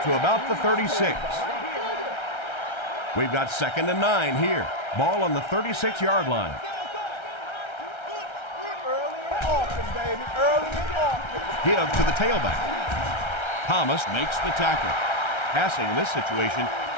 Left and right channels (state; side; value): late; right; 1.3 ms